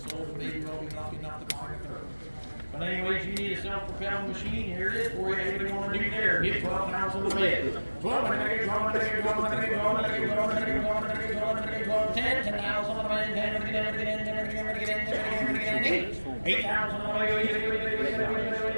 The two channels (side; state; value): both; inverted; correlation -1.00